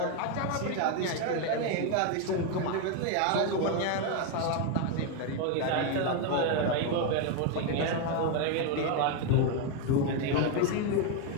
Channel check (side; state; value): both; different; correlation 0.02